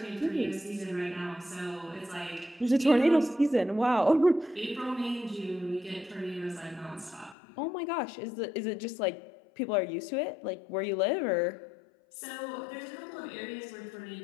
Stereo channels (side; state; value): right; drops out; at 7.4 s